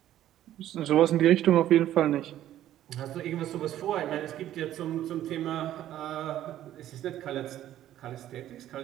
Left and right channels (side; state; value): left; quieter; 12.5 dB